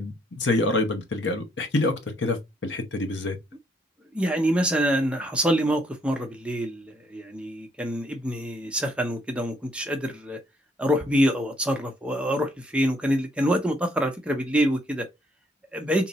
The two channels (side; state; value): both; normal; correlation 0.68